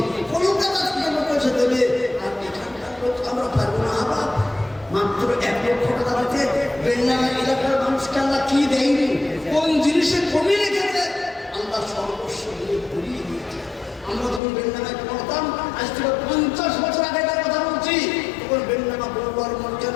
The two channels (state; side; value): drops out; right; at 14.4 s